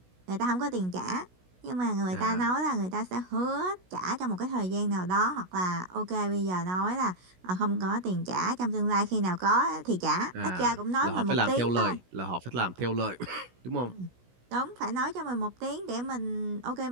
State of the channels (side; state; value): left; late; 16 ms